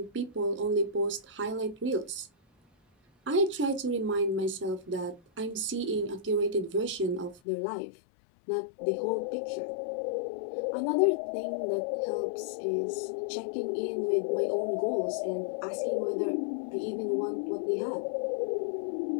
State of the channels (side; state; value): right; drops out; at 7.4 s